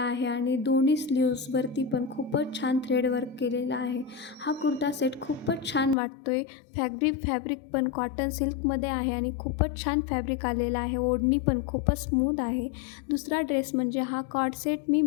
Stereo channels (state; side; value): drops out; right; at 6.0 s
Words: आणि दोन्ही स्लीव्सवरती पण खूपच छान थ्रेड वर्क केलेलं आहे. हा कुर्ता सेट खूपच छान वाटतो आहे. फॅब्रिक पण कॉटन सिल्कमध्ये आहे आणि खूपच छान फॅब्रिक आलेलं आहे. ओढणी पण खूपच स्मूथ आहे. दुसरा ड्रेस म्हणजे हा कॉर्ड सेट मी